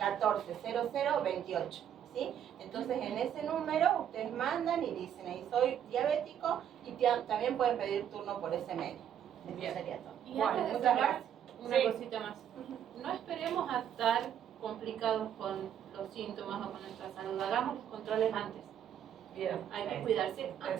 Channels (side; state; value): left; quieter; 9.5 dB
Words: ¿Sí? Entonces en ese número ustedes mandan y dicen, ahí soy diabético, y también pueden pedir turno por ese medio. Eso sería todo. Y Bueno, antes de muchas cerrar, gracias. una cosita más. No esperemos a estar complicados con los síntomas o con nuestra salud. Hagamos los controles antes. Bien, Hay que cuidarse antes.